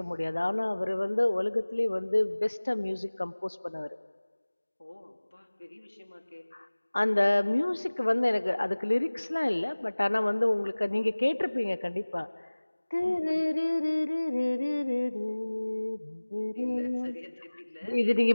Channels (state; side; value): inverted; both; correlation -1.00